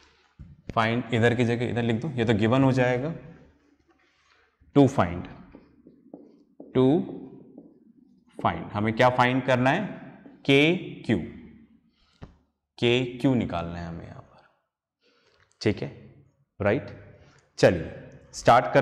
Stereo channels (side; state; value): both; identical; correlation 1.00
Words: फाइंड इधर की जगह इधर लिख दो, ये तो गिवन हो जाएगा। टू फाइंड हमें क्या फाइंड करना है, के क्यू निकालना है हमें यहां पर, ठीक है, राइट। चलिए स्टार्ट